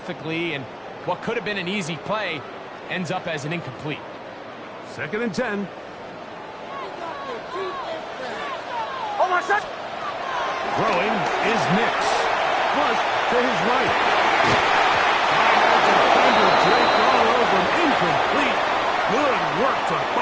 and what could have been an easy play ends up as an incomplete. Second and 10. Oh, my God. Throwing is Nix. Flush to his right. And the defender draped all over him. Incomplete. Good work to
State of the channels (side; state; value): both; identical; correlation 1.00